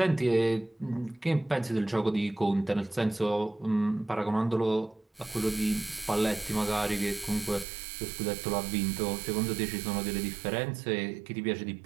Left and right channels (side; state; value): left; drops out; at 7.7 s